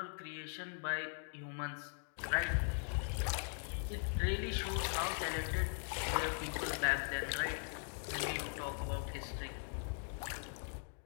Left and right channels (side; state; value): right; silent; 51 dB below the other